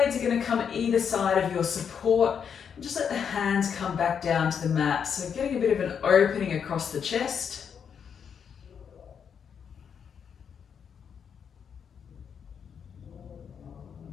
are going to come either side of your support. Just let the hands come back down to the mat. So getting a bit of an opening across the chest.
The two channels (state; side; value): quieter; right; 7.3 dB